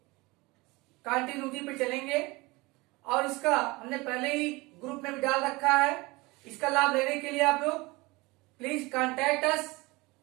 कंटिन्यूटी पे चलेंगे। और इसका हमने पहले ही ग्रुप में भी डाल रखा है। इसका लाभ लेने के लिए आप लोग प्लीज कॉन्टैक्ट अस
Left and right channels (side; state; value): left; quieter; 23.3 dB